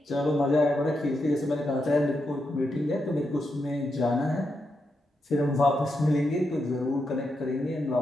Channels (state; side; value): normal; both; correlation 0.84